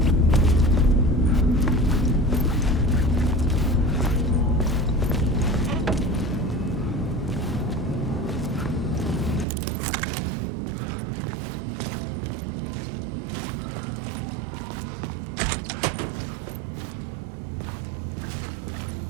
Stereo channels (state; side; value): drops out; left; at 9.5 s